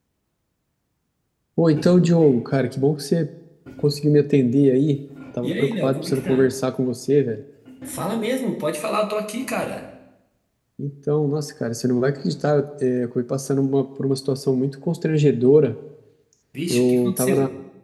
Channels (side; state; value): both; identical; correlation 1.00